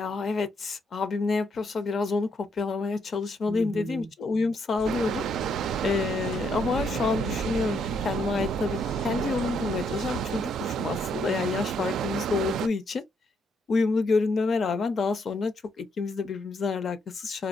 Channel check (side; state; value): both; normal; correlation 0.74